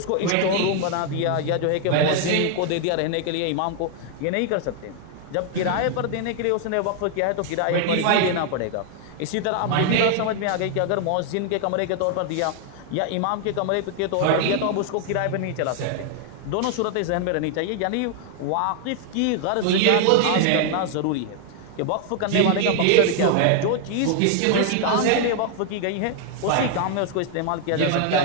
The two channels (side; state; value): both; different; correlation 0.00